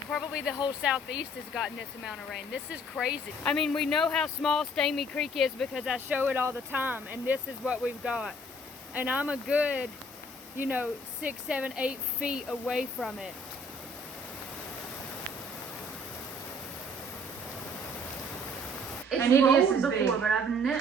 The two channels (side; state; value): both; normal; correlation 0.58